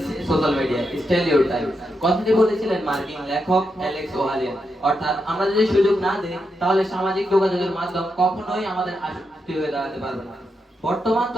social media. Still your time. কথাটি বলেছিলেন মার্কিন লেখক অ্যালেক্স ওহালিয়ান। অর্থাৎ আমরা যদি সুযোগ না দিই তাহলে সামাজিক যোগাযোগের মাধ্যম কখনোই আমাদের আসক্তি হয়ে দাঁড়াতে পারবে না। বর্তমান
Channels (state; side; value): normal; both; correlation 0.84